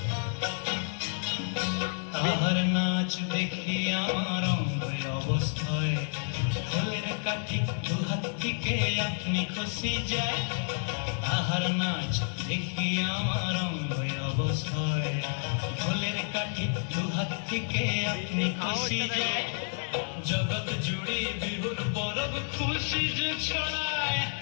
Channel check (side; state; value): right; silent; digital silence